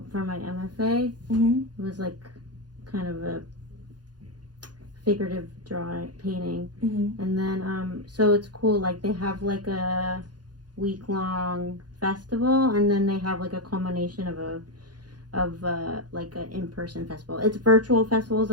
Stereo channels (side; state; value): left; late; 0.69 ms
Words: for my MFA. Mm-hmm. It was like kind of a figurative painting. Mm-hmm. And then so it's cool, like they have like a week-long festival, and then they have like a culmination of like an in-person festival. It's virtual festivals,